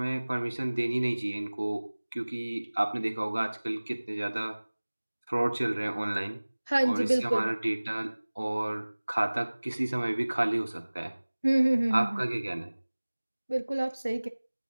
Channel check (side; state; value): both; inverted; correlation -1.00